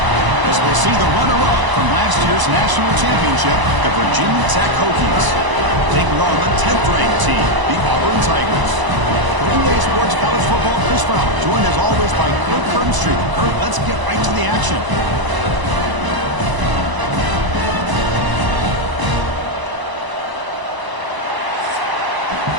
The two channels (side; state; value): left; late; 1.0 ms